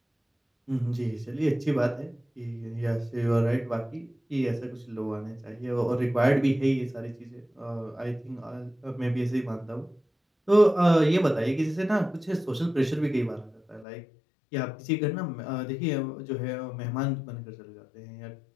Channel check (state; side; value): drops out; right; at 13.9 s